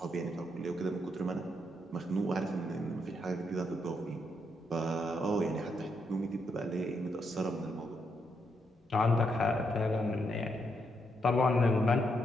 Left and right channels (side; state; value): both; normal; correlation 0.79